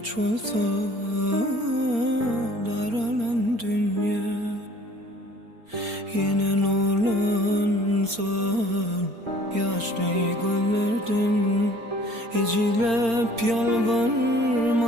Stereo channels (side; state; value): left; late; 4.3 ms